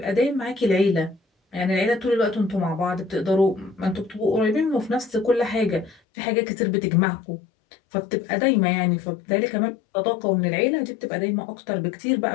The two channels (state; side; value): drops out; right; at 6.0 s